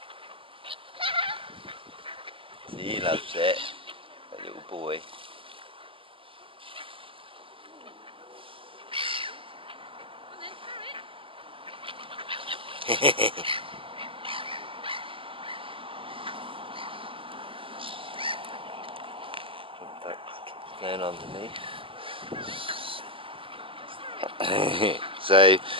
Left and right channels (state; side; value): late; left; 0.25 ms